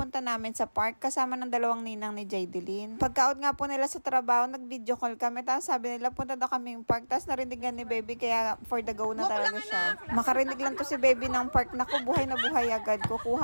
namin sa park kasama ng dalawang ninang ni Jaydelyn. Pagka-out nga po nila sa trabaho, nag-video call kami. Tapos sabi nila, punta daw kaming park. Tapos narindigan ni baby, kaya for the go na talaga siya. Makarinig lang to si baby ng park. Naku, buhay na buhay agad.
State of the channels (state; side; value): inverted; both; correlation -1.00